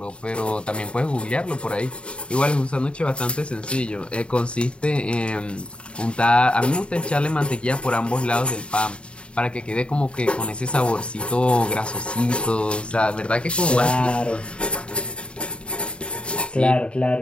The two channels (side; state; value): right; late; 0.056 ms